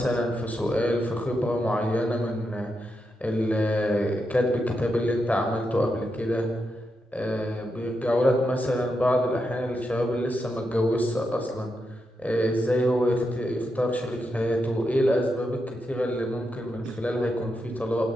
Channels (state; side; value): normal; both; correlation 0.85